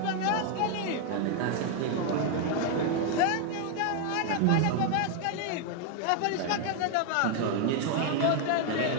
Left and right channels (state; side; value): different; both; correlation 0.00